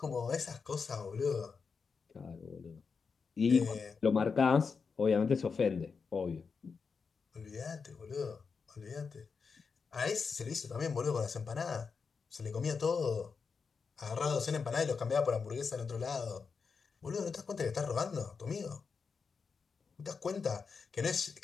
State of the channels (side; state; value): right; quieter; 5.3 dB